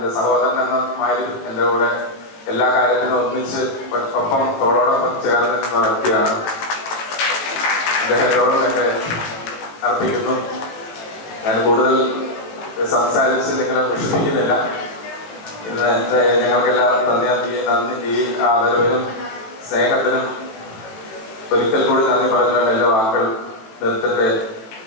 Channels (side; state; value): right; late; 18 ms